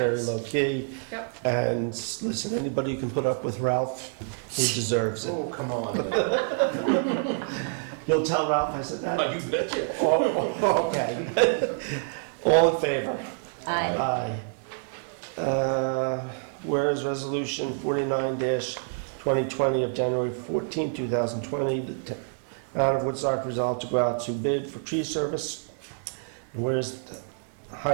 low key. Yep. And listen, anybody who can put up with Ralph, he deserves it. Oh, come on. You'll tell Ralph I said that? Oh, you betcha. Oh, okay. All in favor? Aye. Aye. Whereas Resolution 49-2020 of January 14, 2020, the Town of Woodstock resolved to go out to bid for tree service. And whereas the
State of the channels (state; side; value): silent; left; digital silence